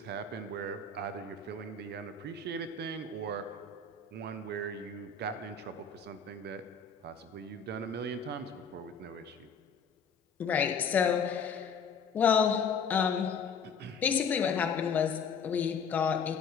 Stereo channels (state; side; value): quieter; right; 5.3 dB